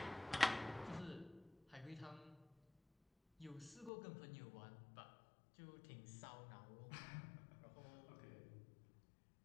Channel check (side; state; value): right; drops out; at 3.9 s